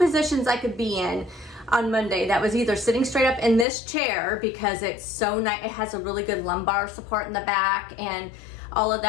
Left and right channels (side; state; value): right; drops out; at 3.7 s